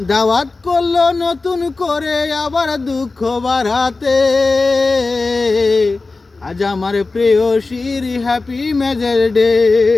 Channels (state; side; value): quieter; right; 3.6 dB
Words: দাওয়াত করলো নতুন করে আবার দুঃখ বাড়াতে। আজ আমার প্রেয়সীর হ্যাপি ম্যারেজ ডে,